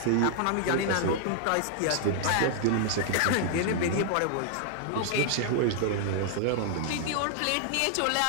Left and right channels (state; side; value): different; both; correlation -0.01